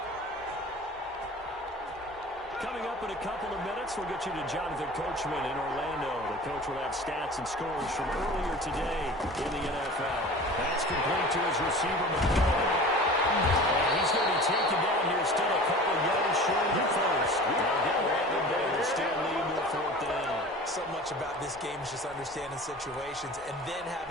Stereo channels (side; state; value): both; normal; correlation 0.39